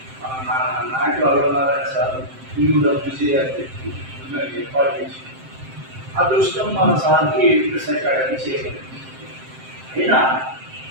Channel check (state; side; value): late; left; 7.6 ms